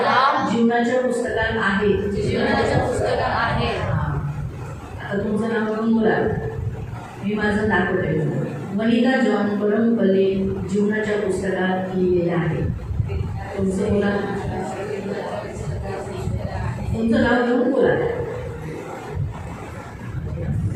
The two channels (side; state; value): both; identical; correlation 1.00